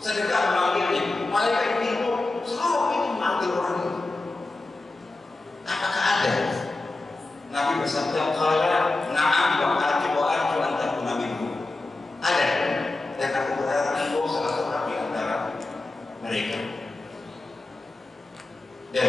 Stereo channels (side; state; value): right; quieter; 3.1 dB